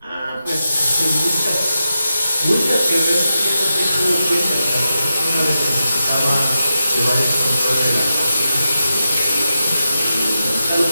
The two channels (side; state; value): both; inverted; correlation -0.88